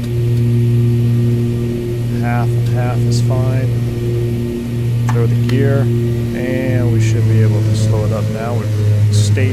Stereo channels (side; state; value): both; identical; correlation 1.00